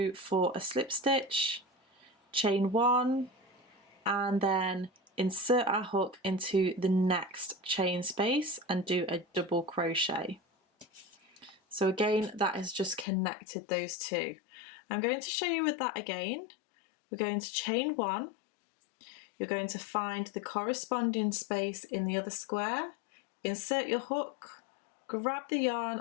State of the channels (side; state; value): right; drops out; at 13.1 s